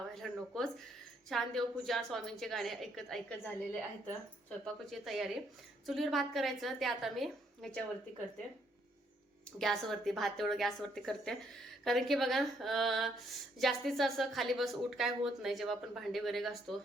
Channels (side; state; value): both; normal; correlation 0.70